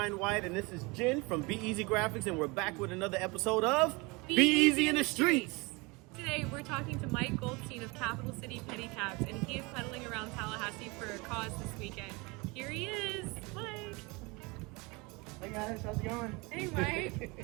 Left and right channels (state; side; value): quieter; left; 26.5 dB